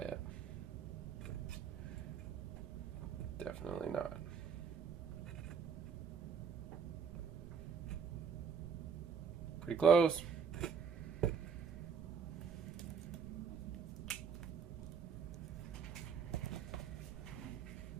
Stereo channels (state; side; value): quieter; left; 6.4 dB